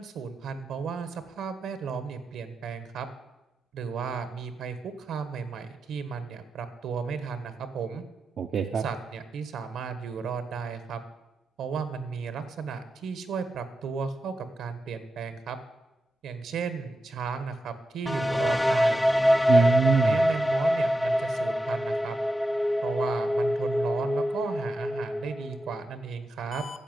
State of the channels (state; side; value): normal; both; correlation 0.89